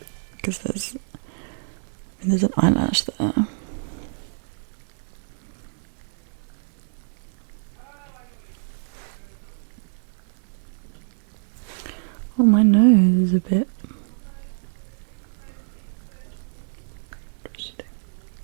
because there's an eyelash there. a bit.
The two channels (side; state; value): left; silent; digital silence